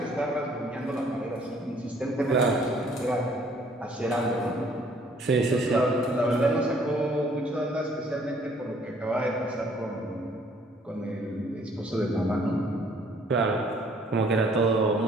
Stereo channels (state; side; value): normal; both; correlation 0.60